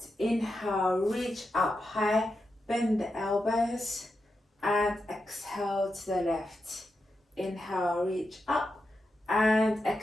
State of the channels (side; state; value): both; normal; correlation 0.88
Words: Inhale, reach up high, bend the elbows, and exhale to the left. Inhale, reach up, and